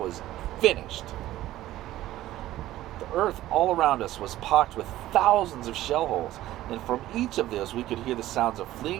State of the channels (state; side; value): quieter; left; 14.8 dB